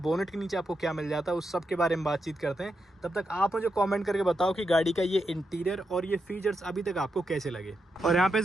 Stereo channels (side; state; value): both; normal; correlation 0.85